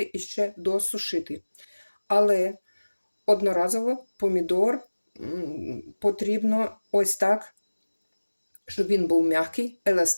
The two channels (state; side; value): inverted; both; correlation -1.00